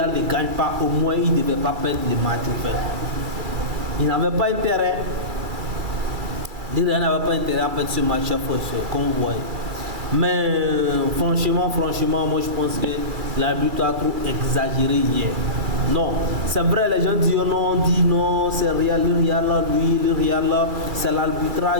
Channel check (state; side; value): late; left; 2.3 ms